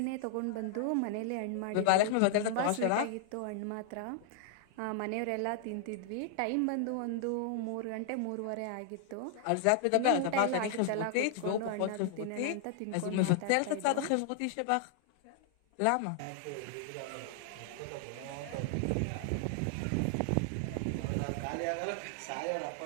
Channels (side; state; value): both; different; correlation 0.00